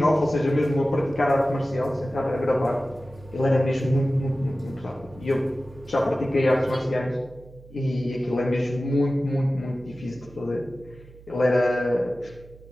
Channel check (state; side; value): noise; right; hum, 21 dB below the sound